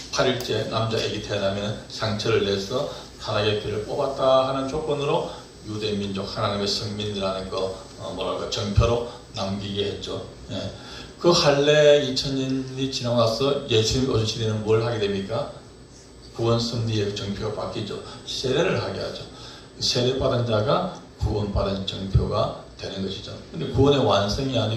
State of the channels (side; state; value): both; identical; correlation 1.00